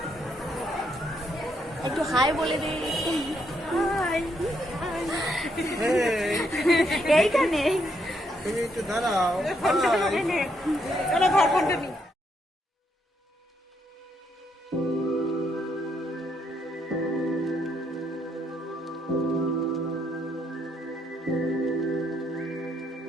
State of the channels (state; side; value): normal; both; correlation 0.75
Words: একটু হাই বলে দিই। এইখানে দাঁড়াও।